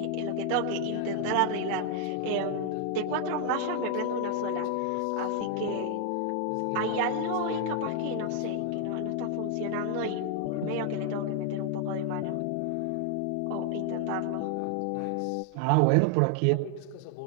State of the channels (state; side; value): different; both; correlation 0.00